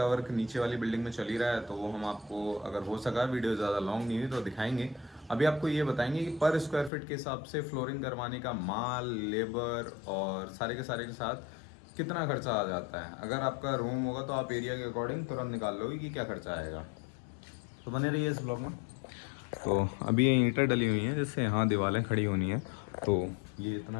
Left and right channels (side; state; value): right; drops out; at 6.9 s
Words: वर्क नीचे वाली बिल्डिंग में चल ही रहा है, तो वो हम आपको अगर हो सका, वीडियो ज़्यादा लॉन्ग नहीं हुई तो दिखाएंगे। अभी आपको ये बताएंगे कि पर स्क्वायर फीट के हिसाब से फ्लोरिंग करवाने का माल, लेबर और सारे के साथ कितना खर्चा आ जाता है। अगर आपका रूम होगा तो आप एरिया के अकॉर्डिंग तुरंत निकाल लोगे कि क्या खर्चा आएगा। तो बने रहिए इस ब्लॉग में। तो अभी ये ईंटें डली हुई हैं जिससे यहाँ दीवारें खड़ी होनी है। तो ये